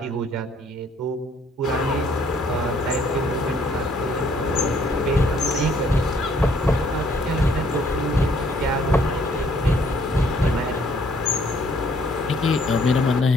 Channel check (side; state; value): both; normal; correlation 0.64